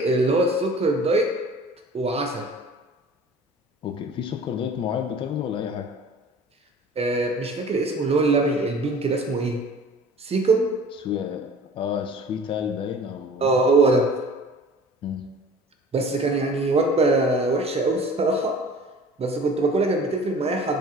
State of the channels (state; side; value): normal; both; correlation 0.45